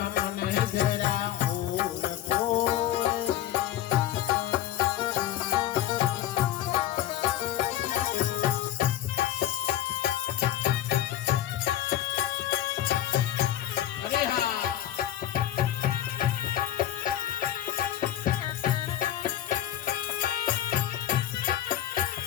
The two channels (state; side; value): quieter; right; 12.3 dB